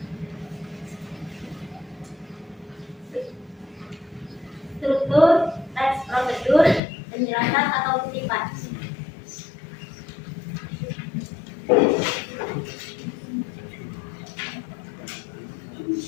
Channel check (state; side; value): drops out; right; at 6.8 s